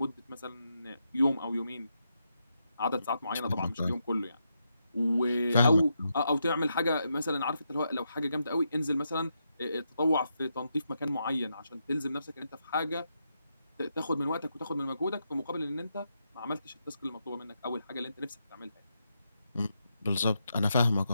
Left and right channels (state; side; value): inverted; both; correlation -0.83